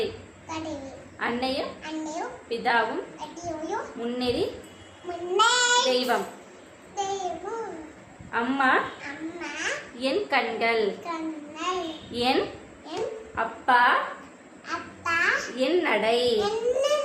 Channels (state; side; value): identical; both; correlation 1.00